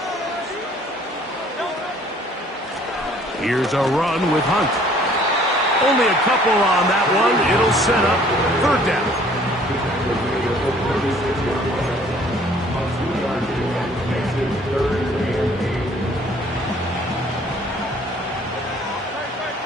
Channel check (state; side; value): normal; both; correlation 0.57